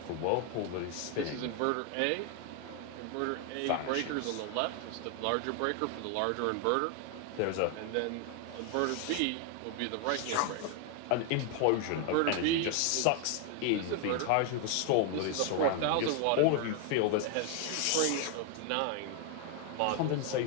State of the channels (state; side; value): different; both; correlation 0.00